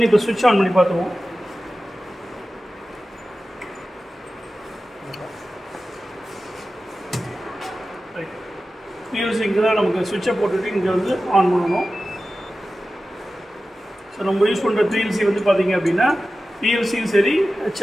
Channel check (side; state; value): both; normal; correlation 0.94